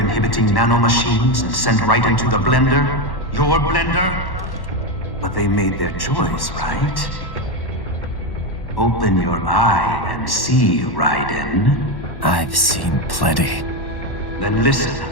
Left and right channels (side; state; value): right; late; 1.1 ms